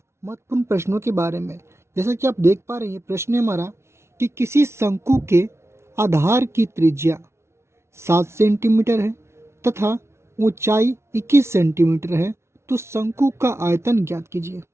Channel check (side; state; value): left; late; 0.13 ms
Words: महत्वपूर्ण प्रश्नों के बारे में। जैसा कि आप देख पा रहे हैं, प्रश्न है हमारा कि किसी शंकु के आधार की त्रिज्या 7 सेंटीमीटर है तथा ऊंचाई 21 सेंटीमीटर है, तो शंकु का आयतन ज्ञात कीजिए।